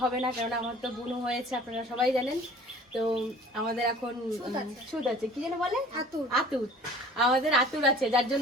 হবে না, কারণ আমার তো বুনু হয়েছে, আপনারা সবাই জানেন। তো আমাদের এখন সুদ আছে, কি যেন বলে, আতুর। আমাদের আতুর আছে, যার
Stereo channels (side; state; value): both; normal; correlation 0.47